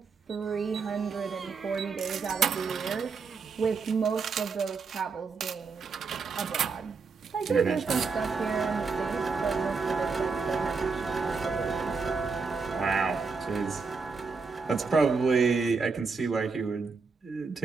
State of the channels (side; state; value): left; quieter; 4.9 dB